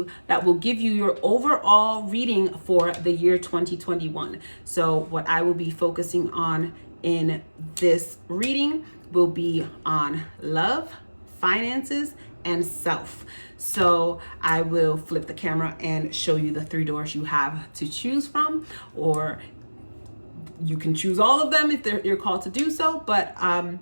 that will give you your overall reading for the year 2021. So what I will be focusing on in this reading will be on love, finances, and self. So I will flip the camera and show you the 3 doors you have to choose from, or you can choose all of them if you're called to do so, but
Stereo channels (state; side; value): inverted; both; correlation -1.00